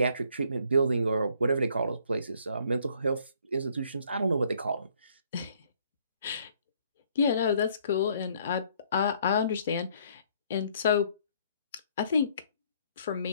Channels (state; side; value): inverted; both; correlation -0.64